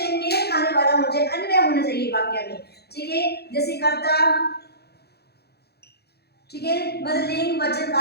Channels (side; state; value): right; late; 0.47 ms